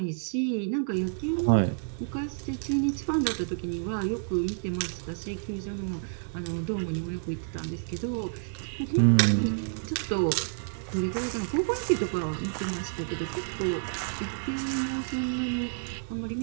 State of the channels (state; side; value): silent; left; 58 dB below the other